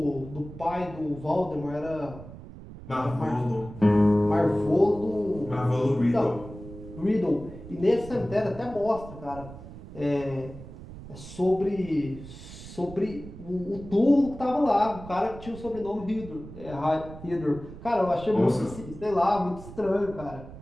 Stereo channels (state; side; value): noise; right; rumble, 14 dB below the sound